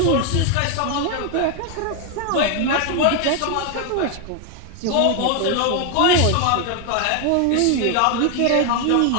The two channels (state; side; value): different; both; correlation 0.01